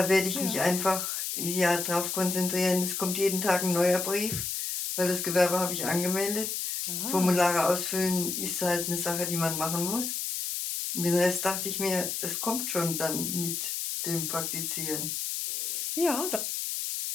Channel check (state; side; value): noise; left; hiss, 2 dB below the sound